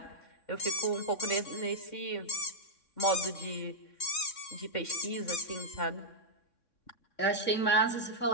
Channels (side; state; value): right; late; 3.6 ms